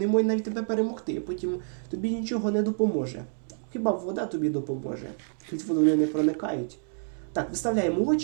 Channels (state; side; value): silent; left; digital silence